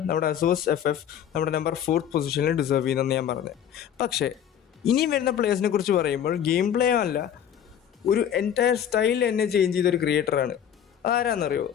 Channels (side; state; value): right; quieter; 9.4 dB